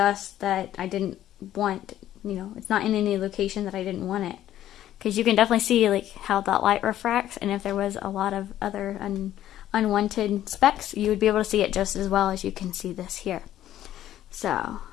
that I didn't want. You know, it's not in any location that I didn't want it. Because you can definitely see like how that light refracts, and if there was a lot of other unwanted specks, you would be able to see it just as well as you can see this here. So,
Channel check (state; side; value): quieter; right; 12.5 dB